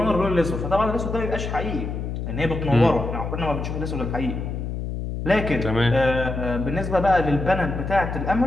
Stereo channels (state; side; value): noise; left; hum, 4 dB below the sound